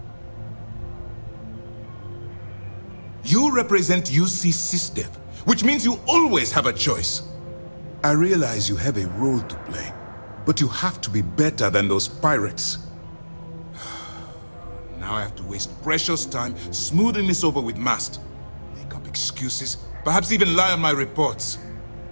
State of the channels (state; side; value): inverted; both; correlation -1.00